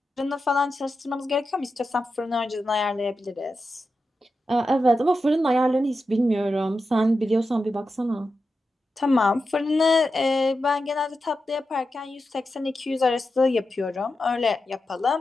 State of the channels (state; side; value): normal; both; correlation 0.90